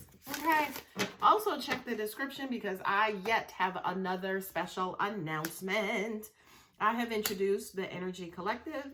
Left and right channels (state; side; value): identical; both; correlation 1.00